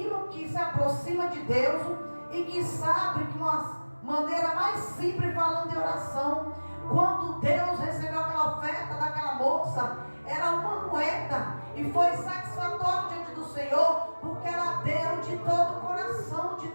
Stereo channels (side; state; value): both; inverted; correlation -1.00